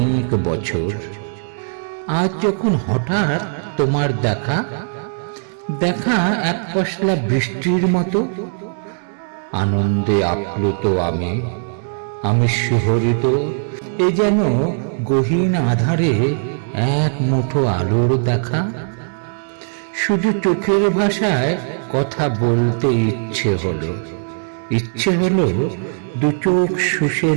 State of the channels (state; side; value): silent; left; digital silence